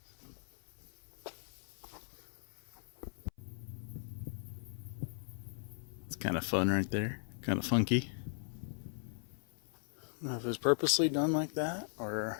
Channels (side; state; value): right; silent; 52 dB below the other